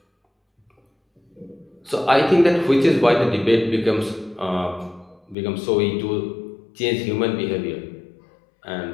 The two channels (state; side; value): drops out; right; at 5.4 s